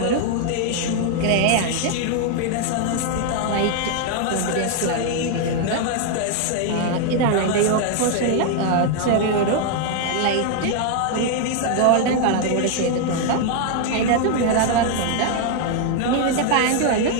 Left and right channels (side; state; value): both; different; correlation 0.00